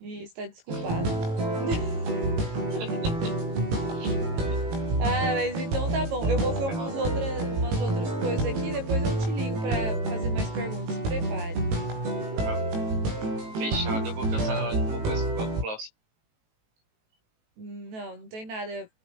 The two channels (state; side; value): late; left; 18 ms